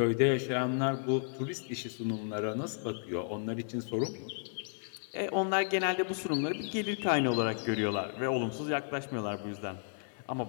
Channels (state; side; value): silent; right; digital silence